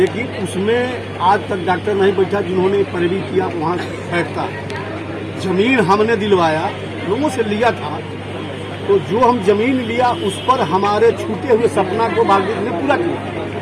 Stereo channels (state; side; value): identical; both; correlation 1.00